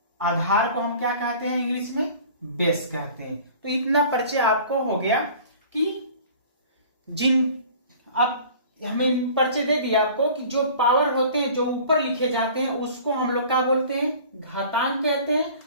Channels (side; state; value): both; inverted; correlation -0.46